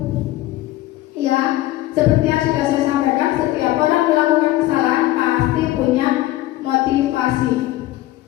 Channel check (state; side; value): quieter; right; 16.3 dB